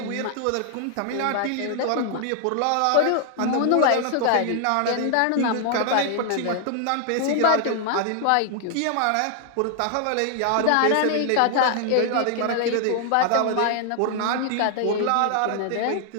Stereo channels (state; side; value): different; both; correlation 0.00